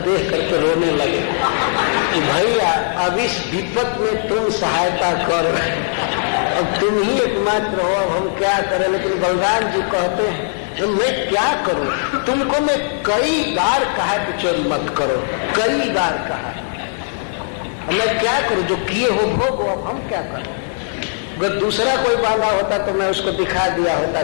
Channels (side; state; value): right; silent; digital silence